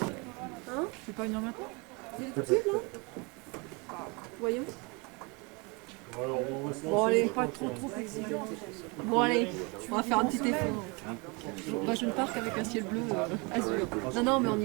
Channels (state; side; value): quieter; left; 29.3 dB